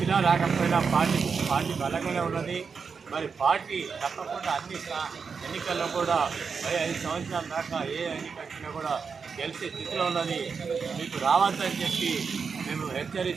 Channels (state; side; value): quieter; left; 5.6 dB